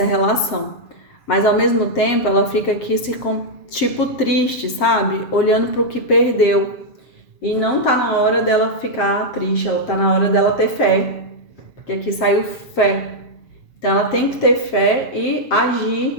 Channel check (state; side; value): late; right; 7.6 ms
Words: relação. Mas ao mesmo tempo ela fica aqui tipo triste, sabe? Olhando para o que perdeu. E não tá na hora dela ficar triste, ela tá na hora dela ter fé. Porque aqui saiu fé. Então ela tem que ter fé e